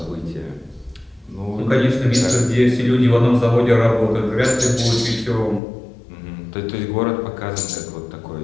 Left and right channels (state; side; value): drops out; right; at 5.6 s